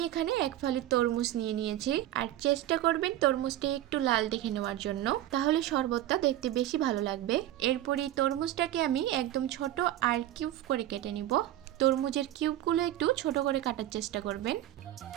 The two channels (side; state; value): left; quieter; 13.4 dB